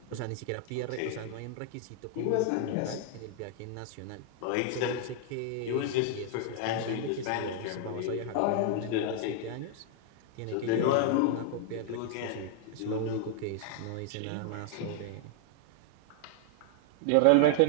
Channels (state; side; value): different; both; correlation -0.01